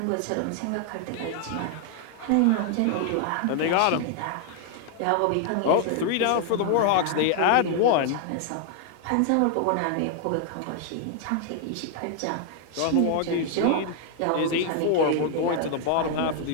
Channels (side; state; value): both; different; correlation 0.00